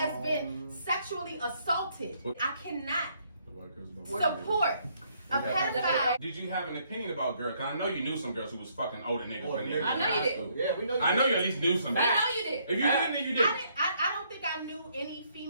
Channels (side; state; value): both; inverted; correlation -0.69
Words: been sexually assaulted, I cannot support a pedophile. Did you have an opinion about girls? Because I know you knew some girls who was fucking older niggas when they were I know in you high did. school. Yeah, we know you I know did. you at least knew some. We know you did. If you didn't, then you did. I don't think I knew any